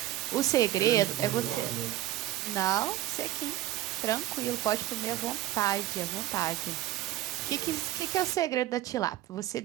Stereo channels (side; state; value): left; quieter; 14.5 dB